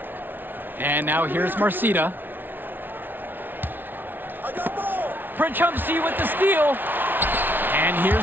And now here's Marcita. Princhumsey with the steal. And here's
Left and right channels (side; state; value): left; late; 0.094 ms